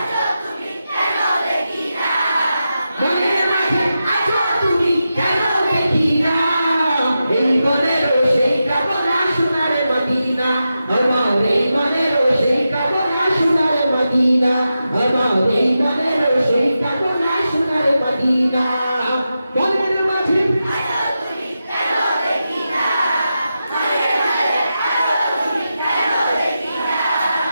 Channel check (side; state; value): both; inverted; correlation -0.90